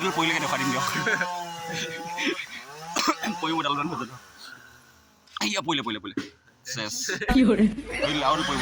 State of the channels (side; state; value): both; identical; correlation 1.00